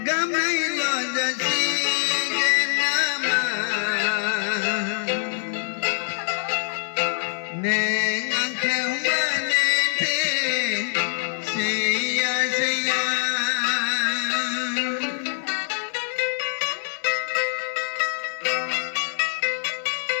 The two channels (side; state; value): right; silent; digital silence